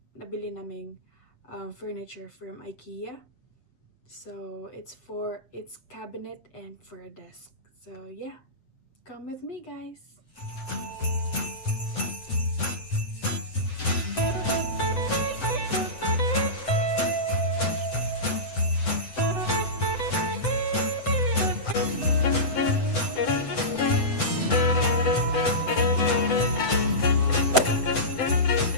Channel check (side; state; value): right; late; 7.9 ms